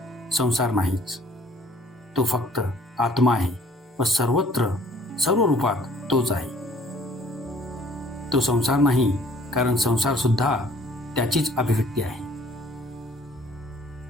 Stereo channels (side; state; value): both; normal; correlation 0.58